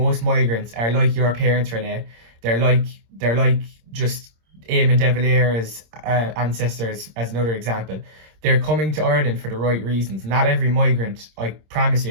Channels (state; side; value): late; left; 26 ms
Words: migrants are like your parents, Renee. They're like just Eamon de Valera's ancestors, as another example. They're coming to Ireland for the right reasons. Not every migrant, I promise